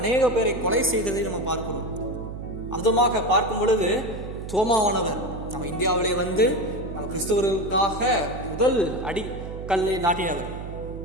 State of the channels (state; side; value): noise; right; hum, 9 dB below the sound